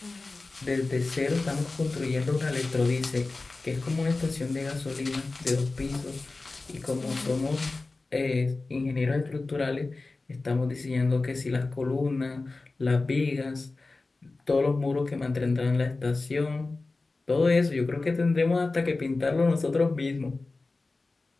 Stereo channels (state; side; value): quieter; right; 3.5 dB